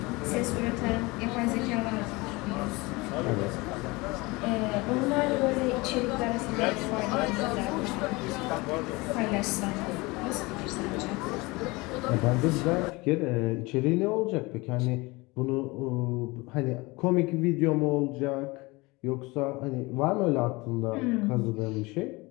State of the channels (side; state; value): right; quieter; 23.8 dB